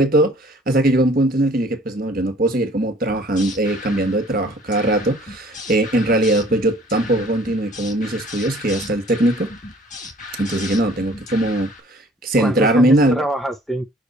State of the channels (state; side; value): normal; both; correlation 0.54